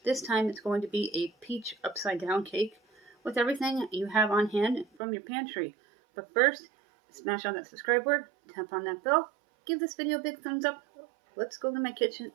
This time it's going to be a peach upside-down cake with everything you have on hand from your pantry. But first, smash on that subscribe button, tap on that bell, give this video a big thumbs up. Let's go to my kitchen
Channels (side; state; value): left; drops out; at 4.9 s